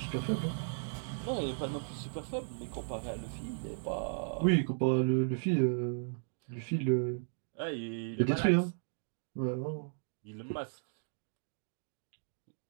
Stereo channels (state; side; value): silent; left; digital silence